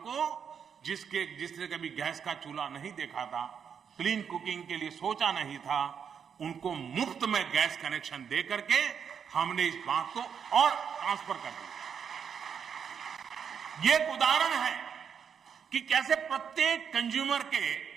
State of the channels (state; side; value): quieter; left; 7.3 dB